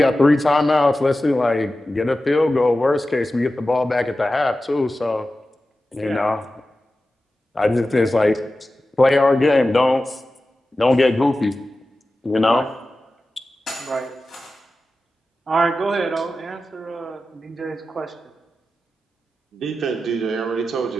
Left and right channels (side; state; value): both; normal; correlation 0.94